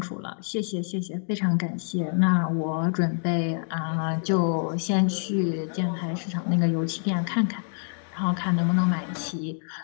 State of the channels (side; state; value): right; silent; 61 dB below the other